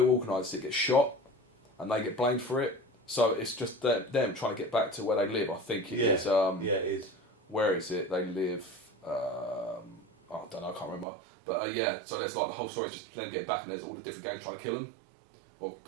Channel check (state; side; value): drops out; left; at 11.1 s